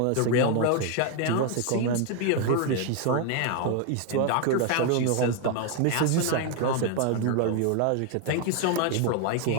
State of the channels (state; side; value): different; both; correlation 0.00